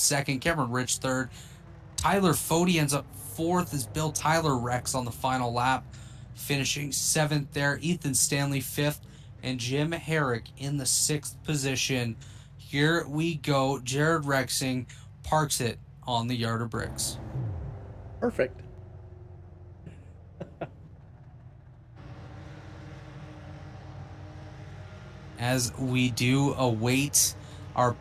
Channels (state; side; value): identical; both; correlation 1.00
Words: Cameron Rich third. Tyler Fody ends up fourth as Bill Tyler wrecks on the final lap, finishing seventh there. Ethan Stanley fifth, and Jim Herrick in the sixth position. Here we go. Jared Rexing parks it on the yard of bricks. Perfect. As we do await our